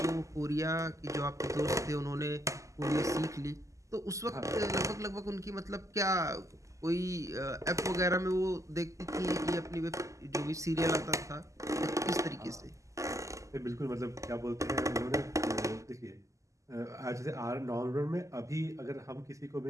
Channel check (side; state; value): left; late; 0.16 ms